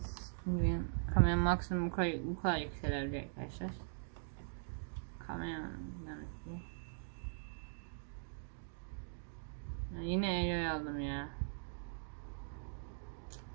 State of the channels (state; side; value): silent; left; digital silence